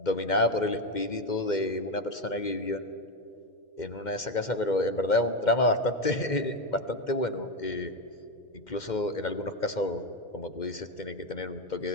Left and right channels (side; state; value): right; late; 2.1 ms